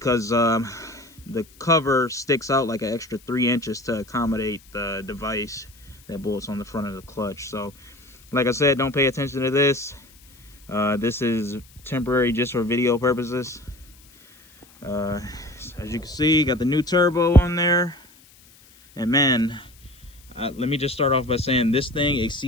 the cover sticks out like an extra 3 inches to accommodate the device that bolts on the front of the clutch. So like I said, don't pay attention to this. This is temporary just for video purposes. As you can see, got the new turbo on there, and man, let me just start off by saying this thing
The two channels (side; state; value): left; noise; hiss, 26 dB below the sound